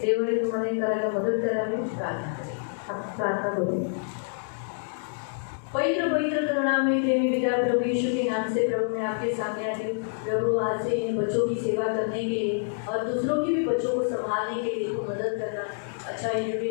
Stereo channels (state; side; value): silent; right; digital silence